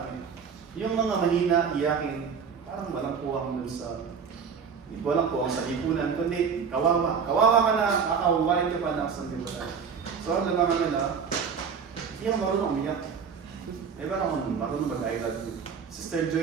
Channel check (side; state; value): left; quieter; 6.4 dB